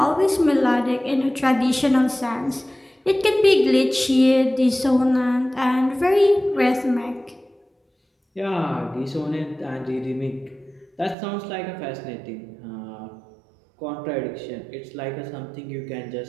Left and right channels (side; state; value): left; drops out; at 11.2 s